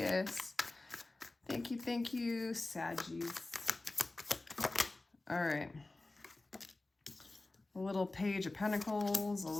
Thank you, Saggies. All right. A little Page of Pentacles, a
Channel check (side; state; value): right; quieter; 3.0 dB